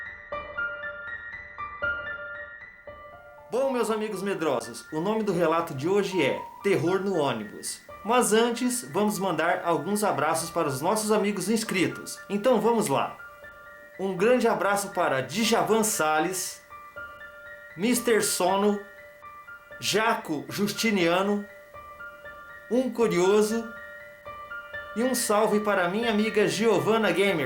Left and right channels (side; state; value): both; identical; correlation 1.00